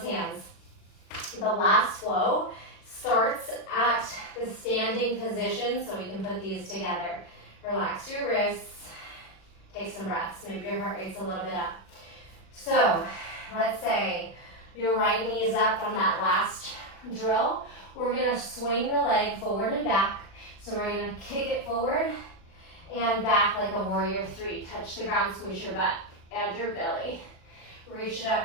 hands. The last flow starts at the standing position, so we can put these together. Relax your wrists, take some breaths. Maybe your heart rate's a little bit up. So, let's say your right knee is up from that last drill. We're gonna swing the leg forward and back. So we're gonna kick it forward and back like a warrior 3. Touch the ground, squeeze your butt. Add your belly. Reach it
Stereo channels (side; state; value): right; late; 36 ms